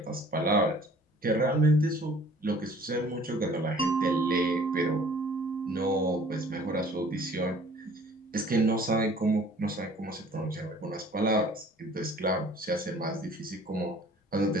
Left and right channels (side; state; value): both; normal; correlation 0.52